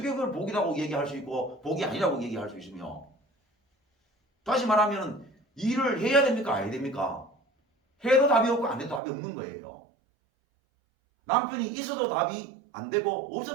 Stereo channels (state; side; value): drops out; left; at 9.0 s